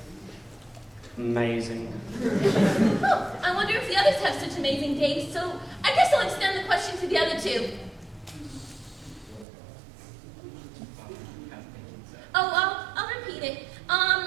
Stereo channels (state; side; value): drops out; left; at 9.5 s